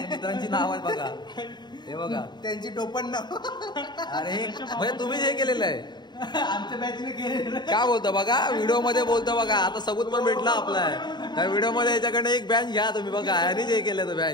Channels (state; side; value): late; right; 0.21 ms